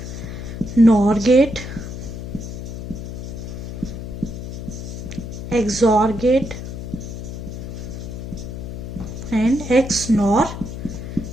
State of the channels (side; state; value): left; noise; hum, 7 dB below the sound